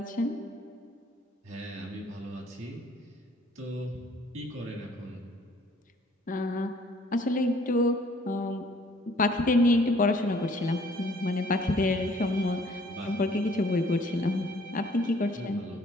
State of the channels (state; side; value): normal; both; correlation 0.58